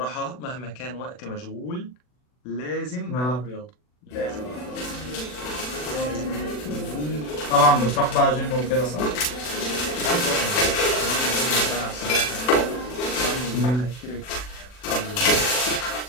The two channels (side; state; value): right; late; 40 ms